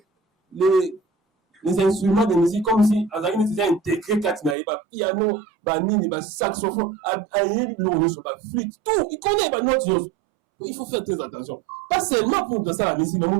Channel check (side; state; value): left; drops out; at 4.5 s